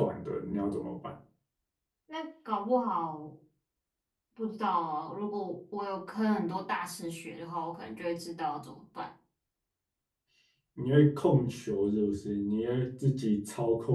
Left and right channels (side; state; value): both; identical; correlation 1.00